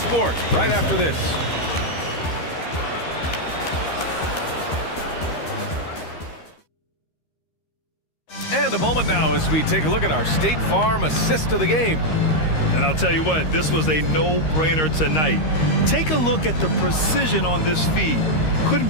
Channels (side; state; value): right; late; 13 ms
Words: right after this. And a moment now as we take a look at our State Farm assist of the game. And I'll tell you what, this was a no-brainer tonight. Take a look at the precision on this feed. Couldn't